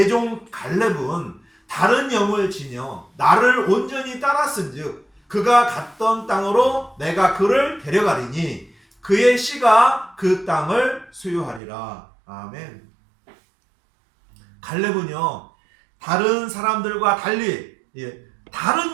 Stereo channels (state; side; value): drops out; left; at 11.6 s